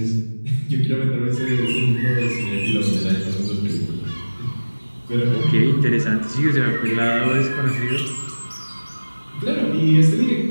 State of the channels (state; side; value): inverted; both; correlation -1.00